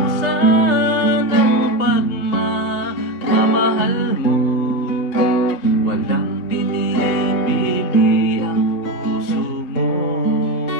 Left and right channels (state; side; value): late; right; 3.2 ms